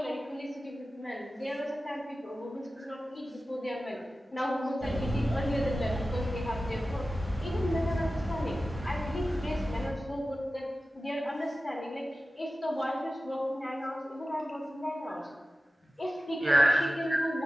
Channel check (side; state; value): both; normal; correlation 0.95